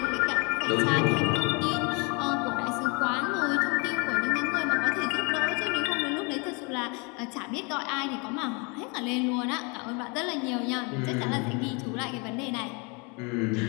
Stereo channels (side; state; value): right; quieter; 31.1 dB